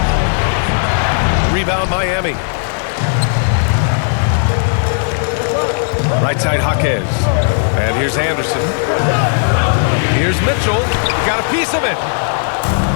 Rebound Miami. Right side Jaquez. And here's Anderson. Here's Mitchell. Got a piece of it.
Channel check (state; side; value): silent; right; digital silence